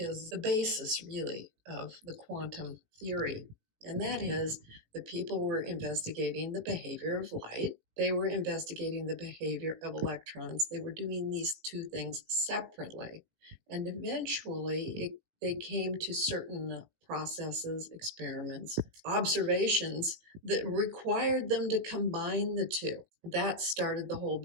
the basis really of the quantum theory. And that is the people were investigating the behavior of light. They were investigating the behavior of electrons. They were doing these two things separately. And eventually they came to certain processes, experiments, observations that required them to combine the two. That started the whole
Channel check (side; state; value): left; late; 18 ms